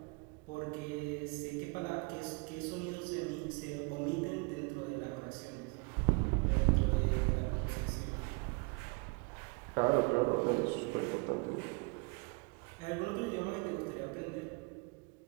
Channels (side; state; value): left; quieter; 30.7 dB